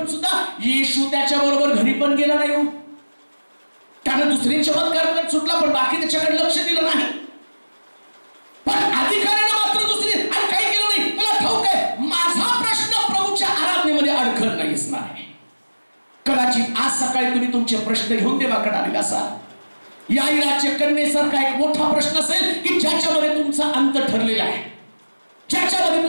सुद्धा येशू त्याच्या बरोबर घरी पण गेला नाही. हो, त्यानं दुसरी चमत्कार सुटला पण बाकी त्याच्याकडे लक्ष दिलं नाही. पण अधिकाऱ्याने मात्र दुसरी आणि काही केलं नाही. तुला ठाऊक आहे माझा प्रश्न प्रभूच्या आराधनेमध्ये अडखळ नाही असणार आहे. कदाचित आज सकाळी तुम्ही तुमचे प्रश्न घेऊन देवाकडे आलेला असाल. याईराच्या कन्येसारखा एक मोठा प्रश्न असेल की ज्याच्यामध्ये तुमचा अंत ठरलेला आहे, ज्याच्यामध्ये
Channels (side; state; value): both; inverted; correlation -1.00